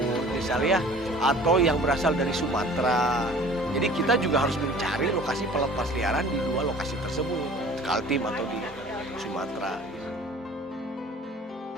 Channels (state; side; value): normal; both; correlation 0.47